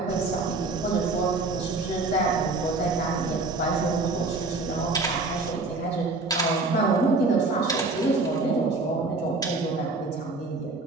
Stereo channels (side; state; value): left; quieter; 3.4 dB